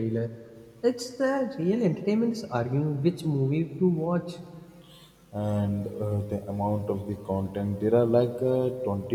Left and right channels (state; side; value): identical; both; correlation 1.00